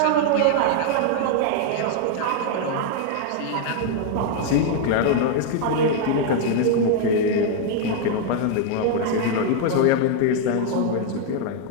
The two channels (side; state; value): both; different; correlation 0.00